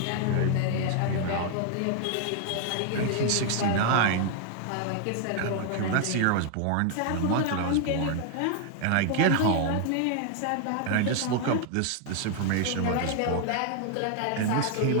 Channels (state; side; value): different; both; correlation 0.00